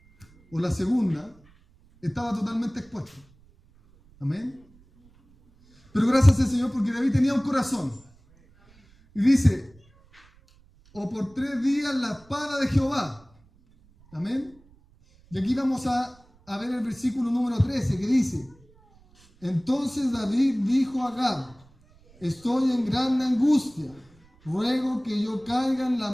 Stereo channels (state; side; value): noise; right; rumble, 29 dB below the sound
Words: o la segunda, estaba totalmente expuesto. Amén. Pero gracias al Señor, porque David tenía un corazón. Y dice, o por 3 días la espada de Jehová. Amén. Y aquí vamos a ver el versículo número 13, que dice, entonces David dijo a Gad, estoy en grande angustia, ruego que yo caiga en la